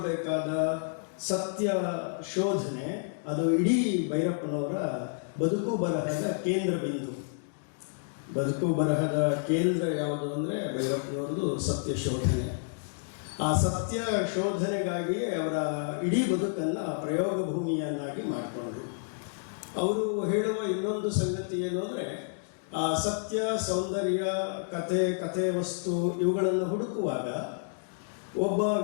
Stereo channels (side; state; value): right; silent; digital silence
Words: ಸತ್ಯ ಶೋಧನೆ, ಅದು ಇಡೀ ಭೈರಪ್ಪನವರ ಬದುಕು ಬರಹದ ಕೇಂದ್ರ ಬಿಂದು. ಬದುಕು ಬರಹದ ಕೇಂದ್ರ ಯಾವುದು ಅಂದರೆ ಭೈರಪ್ಪನವ್ರದ್ದು ಸತ್ಯ ಶೋಧನೆ. ಆ ಸತ್ಯ ಶೋಧನೆಗಾಗಿಯೇ ಅವರ ಇಡೀ ಬದುಕನ್ನು ಪ್ರಯೋಗ ಭೂಮಿಯನ್ನಾಗಿ ಮಾಡಿಕೊಂಡ್ರು. ಅವರು ಹೇಳುವ ಇನ್ನೊಂದು ಸಂಗತಿ ಏನು ಅಂದರೆ, ಆ ಸತ್ಯ, ಸೌಂದರ್ಯ, ಕಥೆ ವಸ್ತು ಇವುಗಳನ್ನು ಹುಡುಕುವಾಗ ಒಬ್ಬ